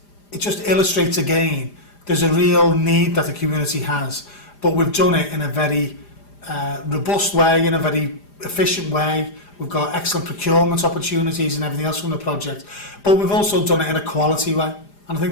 just illustrates again there's a real need that the community has, but we've done it in a very robust way, in a very efficient way. We've got excellent procurement opportunities and everything else from the project, but we've also done it in a quality way. And I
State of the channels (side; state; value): right; late; 4.9 ms